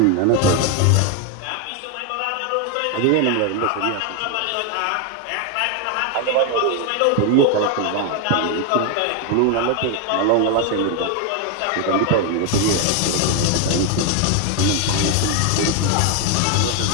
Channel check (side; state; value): both; different; correlation 0.01